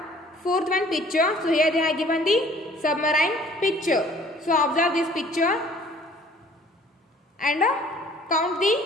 fourth one picture. So here they have given the submarine picture. So observe this picture and count the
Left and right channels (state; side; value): normal; both; correlation 0.54